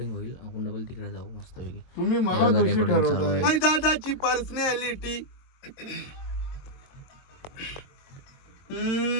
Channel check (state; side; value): late; right; 22 ms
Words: होईल. आपण डबल तिकडे जाऊ मस्त पैकी. तुम्ही मला दोषी ठरवताय. हाय दादाची पर्सनॅलिटी.